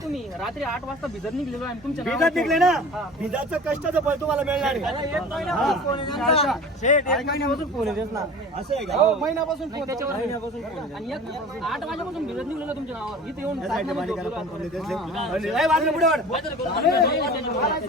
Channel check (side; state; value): both; normal; correlation 0.40